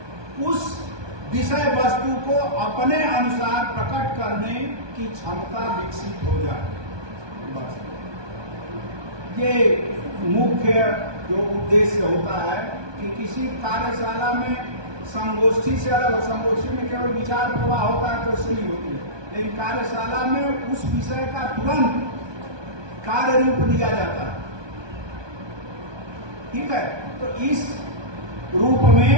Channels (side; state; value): left; late; 1.2 ms